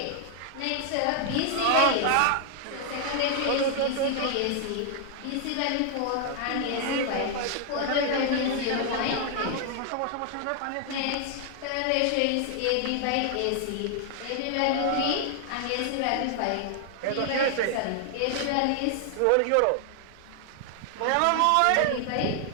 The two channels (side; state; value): both; different; correlation 0.00